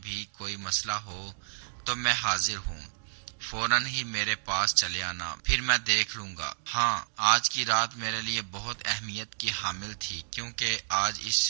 کوئی مسئلہ ہو تو میں حاضر ہوں، فوراً ہی میرے پاس چلے آنا، پھر میں دیکھ لوں گا۔ ہاں، آج کی رات میرے لیے بہت اہمیت کی حامل تھی، کیونکہ آج اس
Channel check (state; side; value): silent; left; digital silence